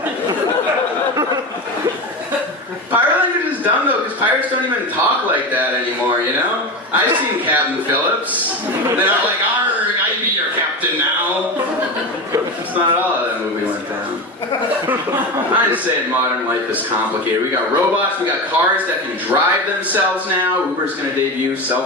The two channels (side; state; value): both; normal; correlation 0.22